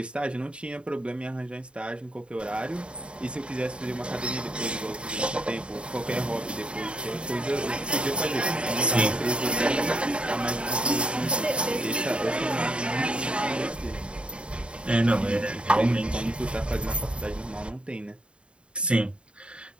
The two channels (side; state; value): left; late; 0.055 ms